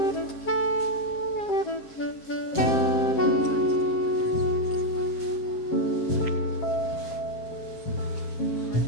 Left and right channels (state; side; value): late; right; 7.5 ms